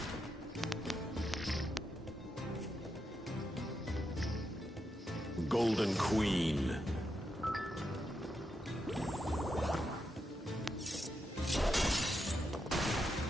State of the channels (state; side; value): normal; both; correlation 0.84